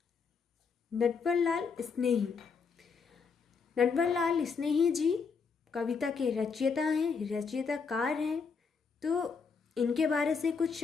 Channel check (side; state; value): right; quieter; 5.4 dB